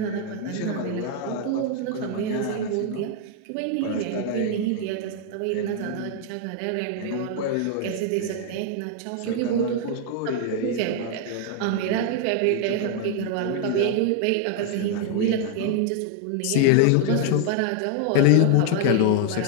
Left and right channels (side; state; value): both; different; correlation 0.00